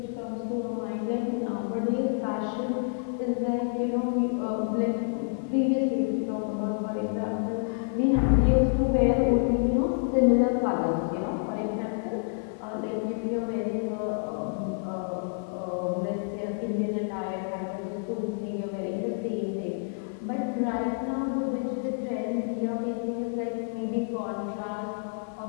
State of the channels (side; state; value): right; silent; 59 dB below the other